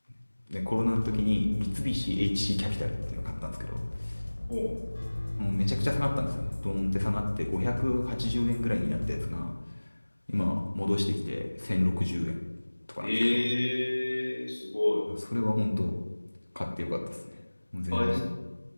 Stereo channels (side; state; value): both; inverted; correlation -1.00